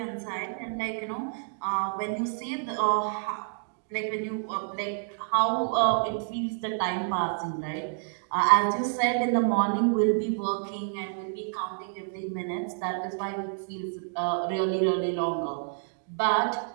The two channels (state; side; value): silent; left; digital silence